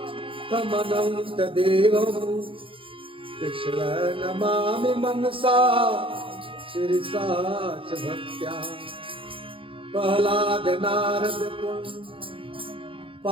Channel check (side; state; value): left; late; 0.25 ms